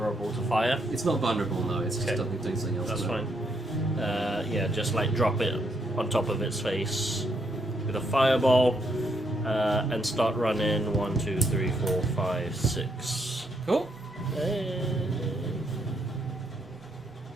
to fire. It's not vulnerable, no. It's just Okay. doing something else. That's to it. fine. Yeah, just like drop it on top of its face with a fireball and start running 1, 2, 3, 4, 5, 6. Cool.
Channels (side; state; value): both; normal; correlation 0.75